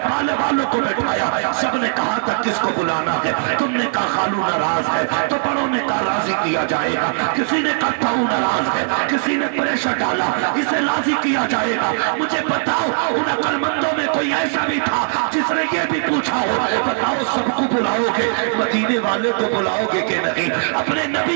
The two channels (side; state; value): left; silent; 66 dB below the other